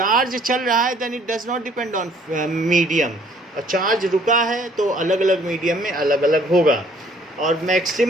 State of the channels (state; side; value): normal; both; correlation 0.60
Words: चल रहा है then it does not depend on medium, और चार्ज रुका है तो अलग अलग मीडियम में अलग अलग होगा, और